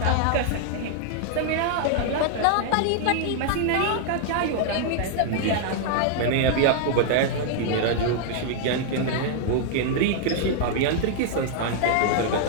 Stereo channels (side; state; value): both; different; correlation 0.00